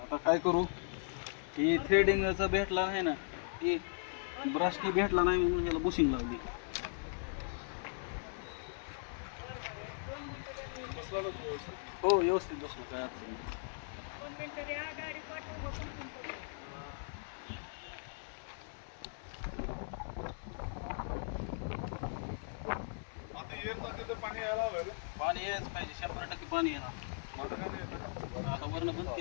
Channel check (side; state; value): right; silent; 52 dB below the other